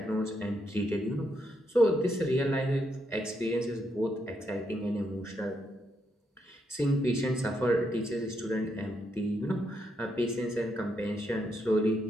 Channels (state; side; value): normal; both; correlation 0.79